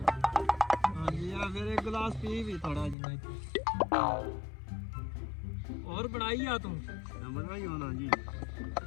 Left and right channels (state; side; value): drops out; right; at 3.0 s